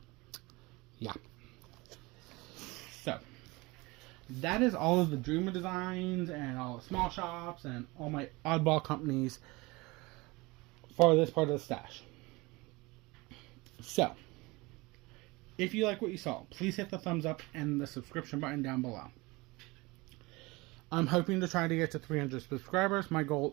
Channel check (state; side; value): quieter; left; 23.5 dB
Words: Yeah. So, that is all of the Dreamer Designs and all the small shops and all my oddball companies for this part of the stash. So, if you like what you saw, please hit the thumbs up and the subscription button down below. I'm hoping to try to get to 300 subscribers. My